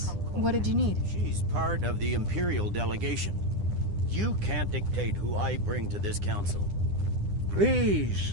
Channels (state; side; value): late; left; 9.9 ms